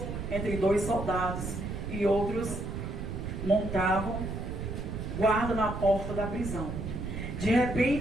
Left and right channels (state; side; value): noise; right; rumble, 5 dB below the sound